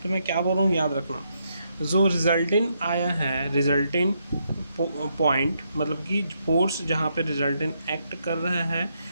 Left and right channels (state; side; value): inverted; both; correlation -0.78